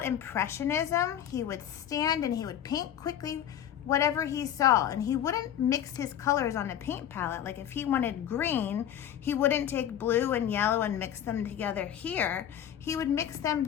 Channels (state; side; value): quieter; right; 10.2 dB